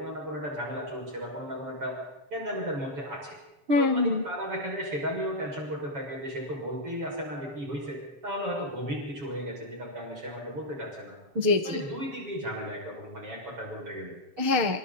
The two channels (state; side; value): late; left; 6.7 ms